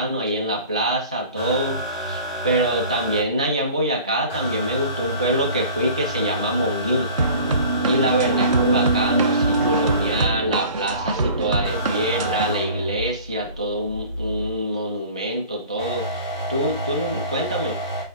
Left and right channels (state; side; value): inverted; both; correlation -0.45